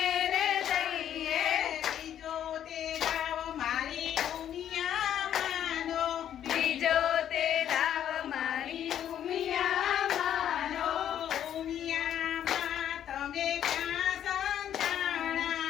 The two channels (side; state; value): right; quieter; 10.2 dB